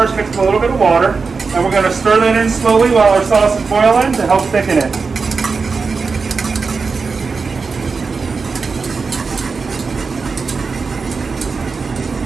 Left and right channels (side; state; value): left; quieter; 4.7 dB